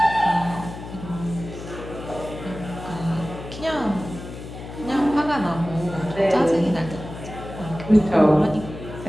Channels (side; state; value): left; noise; hum, 12 dB below the sound